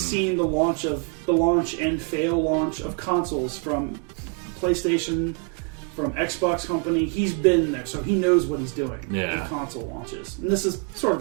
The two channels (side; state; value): left; quieter; 36.4 dB